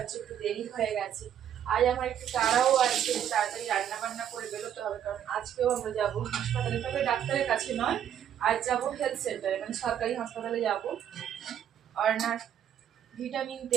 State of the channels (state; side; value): quieter; left; 9.8 dB